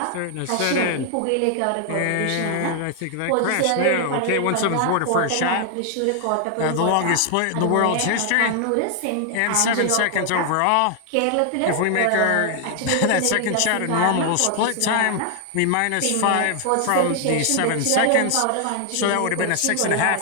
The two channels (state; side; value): different; both; correlation 0.00